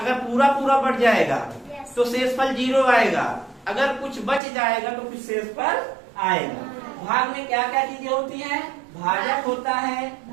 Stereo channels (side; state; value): left; drops out; at 4.4 s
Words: पूरा पूरा बढ़ जाएगा तो शेषफल 0 आएगा। अगर कुछ बच जाएगा तो फिर शेषफल आएगा। भाग में क्या क्या चीजें होती हैं, भाजक होता है,